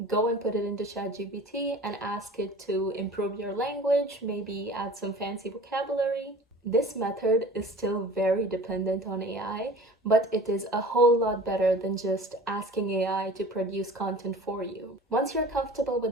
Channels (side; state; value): both; normal; correlation 0.43